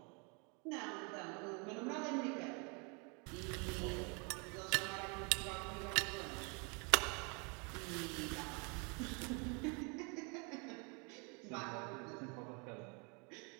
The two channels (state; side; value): quieter; left; 33.2 dB